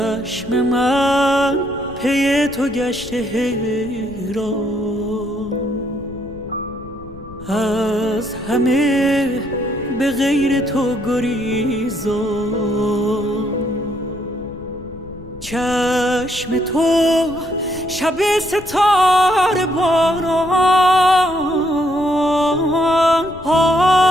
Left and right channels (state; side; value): noise; left; rumble, 17 dB below the sound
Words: من پی تو گشته حیران، از همه به غیر تو گریزان. چشم تو شب ستاره باران،